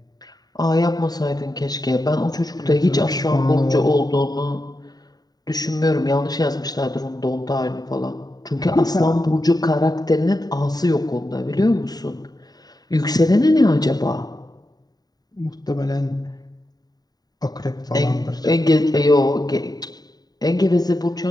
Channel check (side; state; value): right; late; 0.19 ms